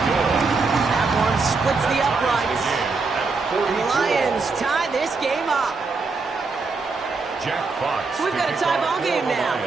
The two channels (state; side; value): quieter; left; 4.2 dB